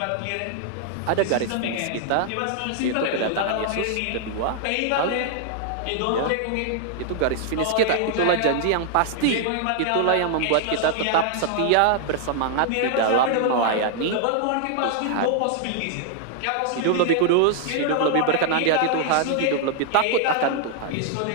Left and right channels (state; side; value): different; both; correlation 0.00